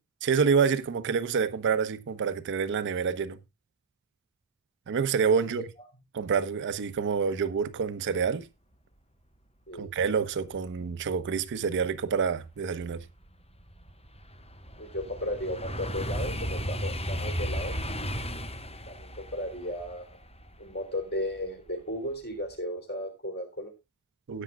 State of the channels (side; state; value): left; quieter; 4.2 dB